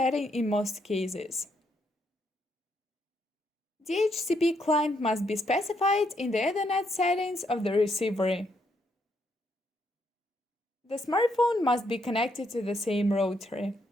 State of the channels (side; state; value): both; normal; correlation 0.75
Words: in most cases. DHCP client must be specified in the Ethernet settings of the receiver. The smartphone must be connected to the same router.